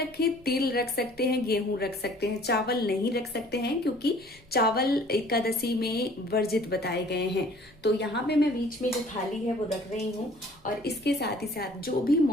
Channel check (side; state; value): left; noise; rumble, 30 dB below the sound